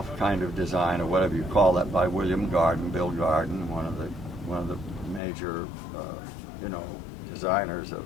kind of design, or whatever you call that, by William Garden, Bill Garden, one of the major, designers of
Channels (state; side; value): drops out; right; at 5.2 s